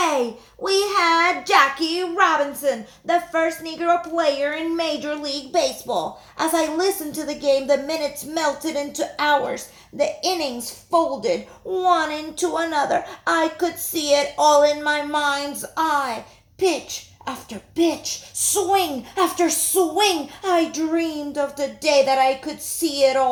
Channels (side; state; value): both; identical; correlation 1.00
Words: We had Jackie Robinson, the first Negro player in Major League Baseball. As I listened to the game, the minutes melted into hours. The innings folded one into another. I could see it all in my mind's eye. Pitch after pitch, swing after swing. I dreamed of the day that I could see it